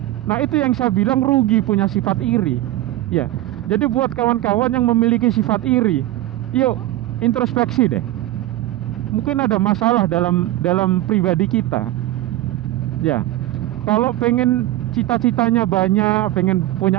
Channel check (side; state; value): left; quieter; 15.7 dB